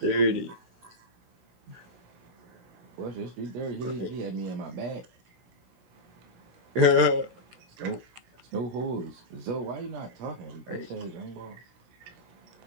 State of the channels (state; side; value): late; left; 16 ms